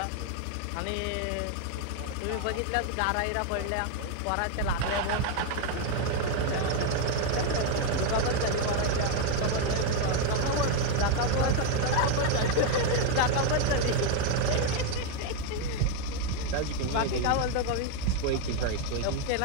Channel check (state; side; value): different; both; correlation 0.01